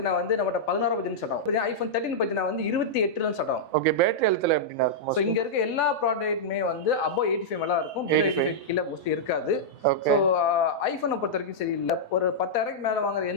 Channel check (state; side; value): normal; both; correlation -0.08